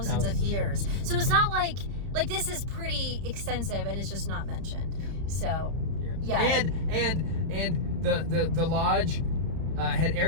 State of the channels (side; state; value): left; late; 31 ms